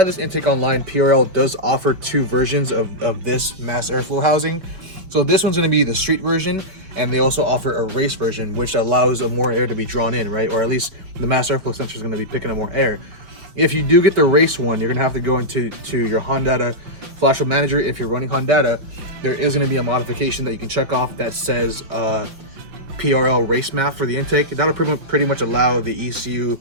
this intake online, PRL does offer 2 versions of this mass airflow housing. So this one's gonna be the street version, and they also offer a race version, which allows more air to be drawn in, right? Or at least the mass airflow sensor is gonna be picking up more air. If you do get the race one, you're gonna have to go into your Honda Flash Manager. If you're running Honda, there is gonna be a modification that you can check off that says PRL race MAF for the intake. That'll pretty much allow the ECU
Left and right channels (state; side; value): late; left; 5.7 ms